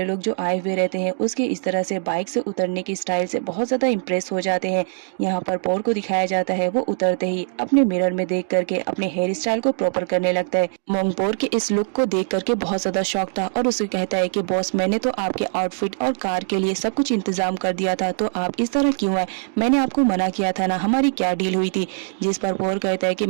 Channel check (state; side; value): silent; left; digital silence